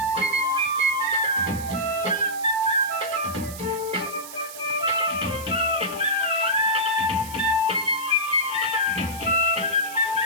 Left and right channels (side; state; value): right; noise; hiss, 13 dB below the sound